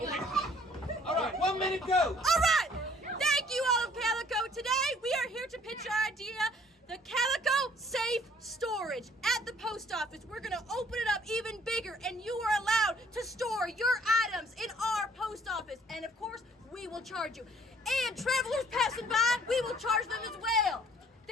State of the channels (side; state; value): both; normal; correlation 0.58